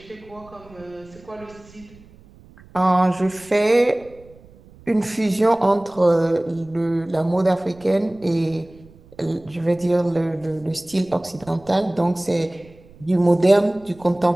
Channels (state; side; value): noise; right; rumble, 24 dB below the sound